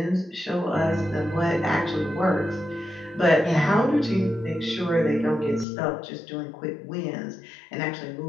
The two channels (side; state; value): right; drops out; at 5.7 s